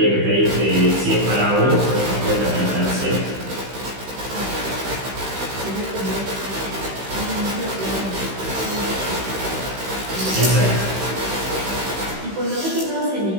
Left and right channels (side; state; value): left; late; 15 ms